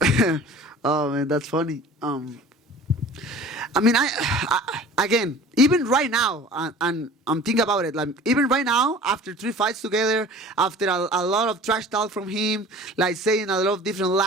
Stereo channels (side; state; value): both; normal; correlation 0.43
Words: Oh, man, that's funny. I mean, I again, even right now, and I'm thinking about it, like even right now, after 3 fights together, after a lot of trash talk from him, like saying a lot of different